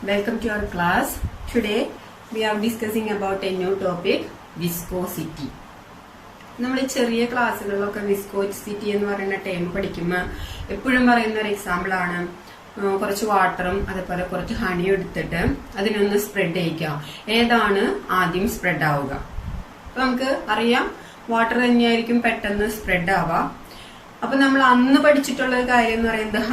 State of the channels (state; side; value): identical; both; correlation 1.00